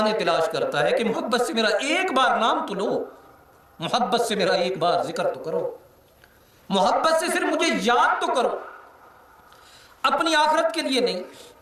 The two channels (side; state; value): both; identical; correlation 1.00